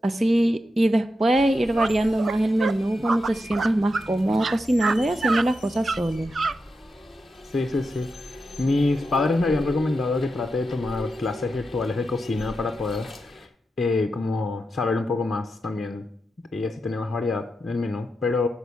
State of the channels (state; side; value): normal; both; correlation 0.88